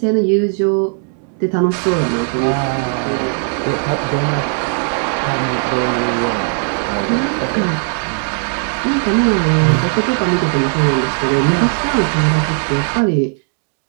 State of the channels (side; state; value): left; silent; 57 dB below the other